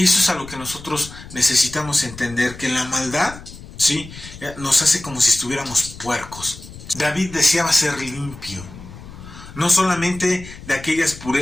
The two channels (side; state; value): left; noise; rumble, 16 dB below the sound